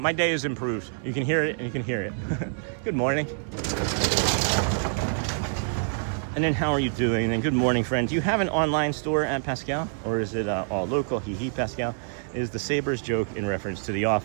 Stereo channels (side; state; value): left; silent; digital silence